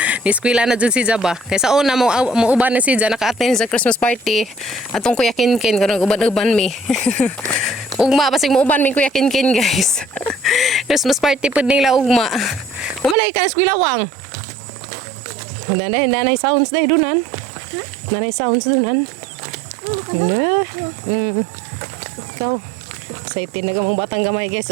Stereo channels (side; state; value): left; drops out; at 13.2 s